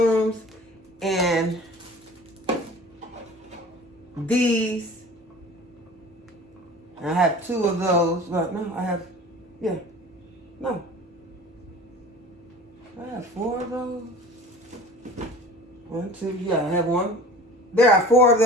and these. I have 2 of those. Well, no, I have 4 of those. 1, 2, yeah, I have 1. There are 4 of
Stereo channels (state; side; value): normal; both; correlation 0.42